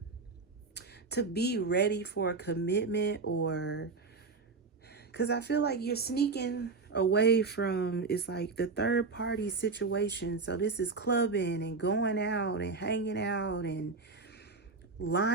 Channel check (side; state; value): left; quieter; 4.2 dB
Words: be ready for a commitment, or because I feel like you're sneaking away from, it's like, the third party situation. So this is clubbing and going out and hanging out and